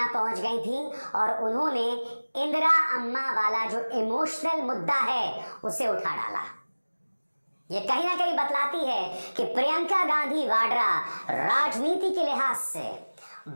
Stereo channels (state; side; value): inverted; both; correlation -1.00